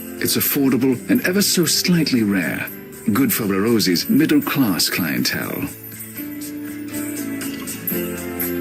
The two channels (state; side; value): identical; both; correlation 1.00